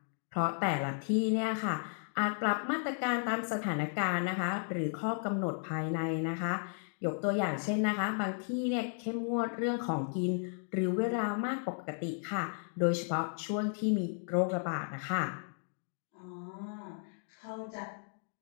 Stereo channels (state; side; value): silent; right; 55 dB below the other